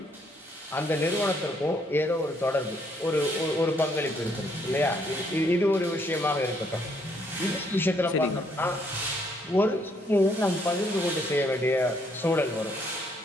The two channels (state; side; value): normal; both; correlation 0.70